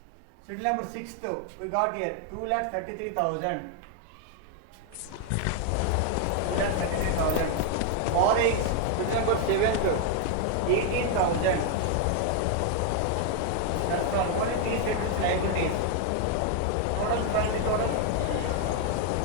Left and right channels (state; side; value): different; both; correlation 0.01